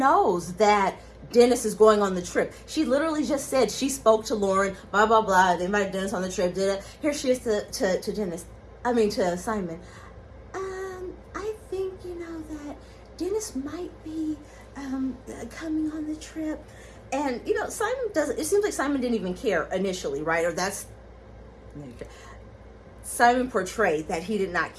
that Dennis is going on the trip. She literally just said she spoke to Lauren, blah, blah, blah. They invited Dennis on the trip. Here she is to Dennis. I mean, to Simon. I think, you know, that Dennis might be coming on the trip. And, you know, Simon doesn't, it seems like Simon didn't even care initially, right? Or that's, Simon portrayed that he did not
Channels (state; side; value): identical; both; correlation 1.00